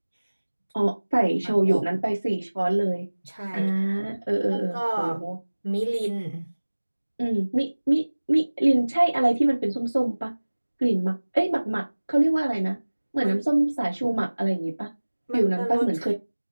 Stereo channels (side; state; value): both; inverted; correlation -1.00